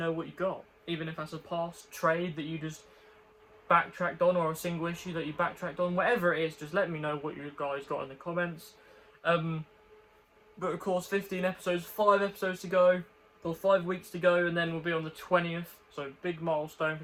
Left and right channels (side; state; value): both; identical; correlation 1.00